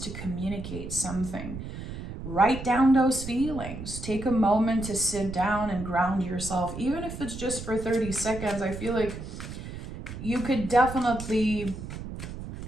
to communicate something. Write down those feelings. Take a moment to sit down and ground yourself. Even if it's just for 30 seconds, I feel like you could definitely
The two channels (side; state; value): right; noise; rumble, 9 dB below the sound